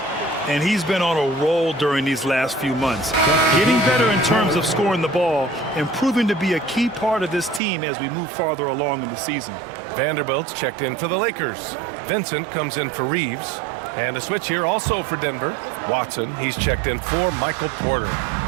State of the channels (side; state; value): left; drops out; at 7.6 s